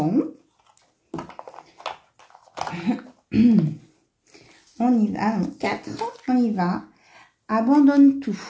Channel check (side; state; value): both; identical; correlation 1.00